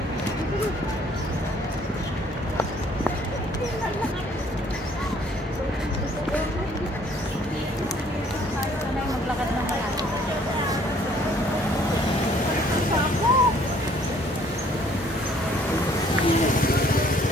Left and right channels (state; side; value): normal; both; correlation 0.60